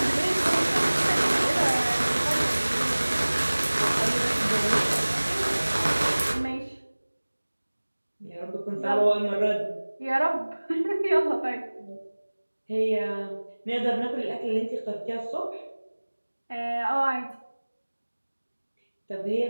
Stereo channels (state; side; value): inverted; both; correlation -1.00